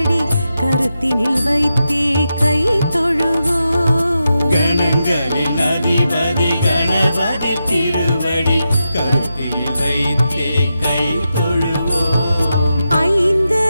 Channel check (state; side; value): inverted; both; correlation -0.88